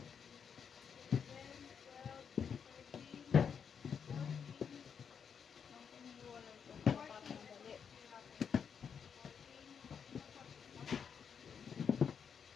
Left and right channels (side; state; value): right; quieter; 7.0 dB